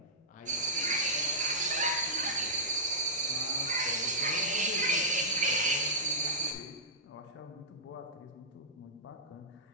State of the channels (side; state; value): both; normal; correlation -0.13